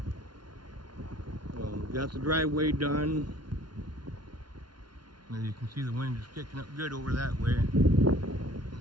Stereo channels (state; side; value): late; left; 0.71 ms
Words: Got the driveway done. As you can see, the wind is kicking up good over that way. You